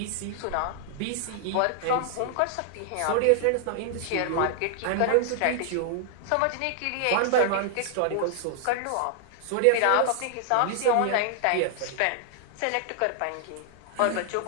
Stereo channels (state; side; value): different; both; correlation 0.00